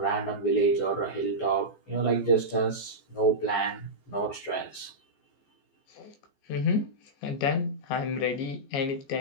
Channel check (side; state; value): right; late; 14 ms